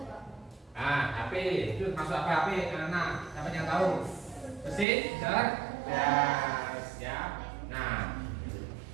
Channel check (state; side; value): drops out; left; at 4.9 s